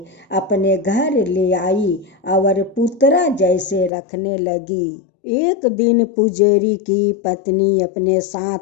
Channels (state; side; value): drops out; right; at 3.9 s